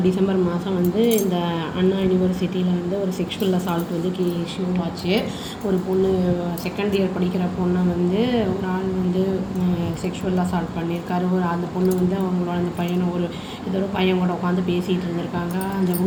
டிசம்பர் மாதம் வந்து இந்த அண்ணா யூனிவர்சிட்டியில் வந்து ஒரு செக்ஷுவல் அசால்ட் வந்து இஷ்யூ ஆச்சு. ஒரு பொண்ணு செகண்ட் இயர் படிக்கிற பொண்ணை வந்து ஒரு ஆள் வந்து செக்ஷுவல் அசால்ட் பண்ணியிருக்காரு. அந்த பொண்ணு வந்து அவங்களோட அந்த பையனை ஏதோ ஒரு பையன் கூட உட்காந்து பேசிகிட்டு இருந்திருக்காங்க அந்த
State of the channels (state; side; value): identical; both; correlation 1.00